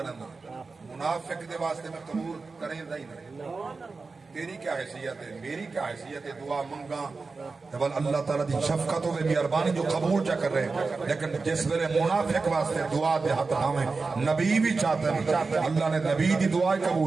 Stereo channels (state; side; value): quieter; left; 4.2 dB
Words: دا منافق دے واسطے میں قبول کریں دائی نہیں تیری کیا حیثیت ہے میری کیا حیثیت ہے دعا منگا تبال اللہ تعالیٰ دی شفقت و مہربانی جو قبول جا کر رہے ہیں لیکن جس ویلے منافق واسطے دعا دے حق ہمیں نبی بھی چاہتے ہیں اللہ نے نبی دی دعائیں